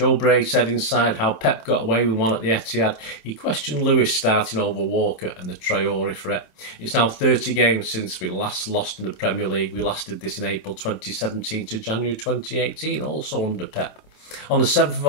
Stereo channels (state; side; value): late; right; 26 ms